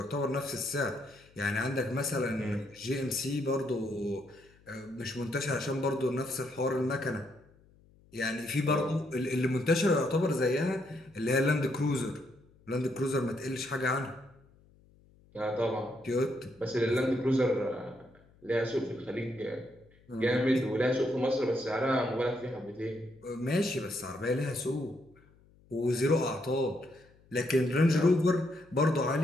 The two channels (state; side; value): noise; left; hum, 29 dB below the sound